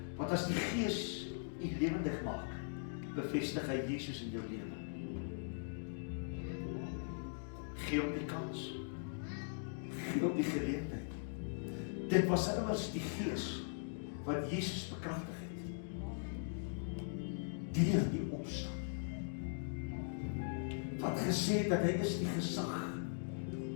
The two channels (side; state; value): right; silent; digital silence